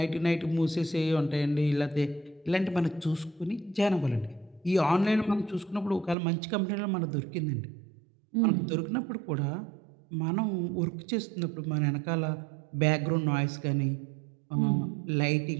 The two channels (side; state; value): left; drops out; at 6.2 s